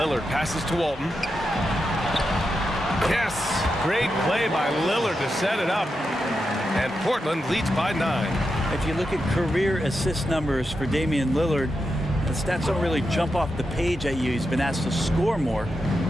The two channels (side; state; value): both; normal; correlation 0.87